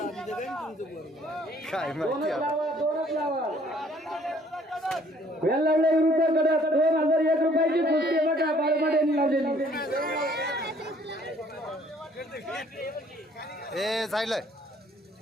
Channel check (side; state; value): both; normal; correlation 0.60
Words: काय माहिती आता. वेल्लावडे विरुद्ध कडक 2001 रुपयाची कुस्ती बघा बाळमाडेंनी लावलेली. ए जायलंय